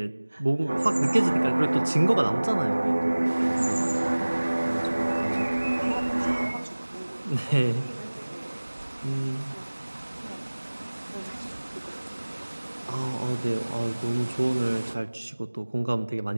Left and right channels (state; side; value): inverted; both; correlation -1.00